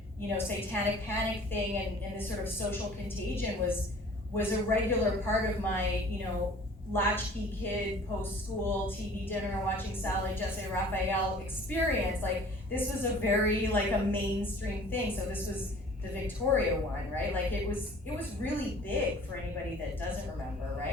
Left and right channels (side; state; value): both; normal; correlation 0.48